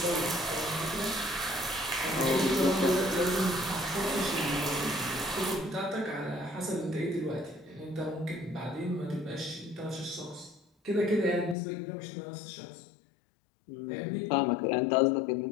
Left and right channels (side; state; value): right; drops out; at 11.6 s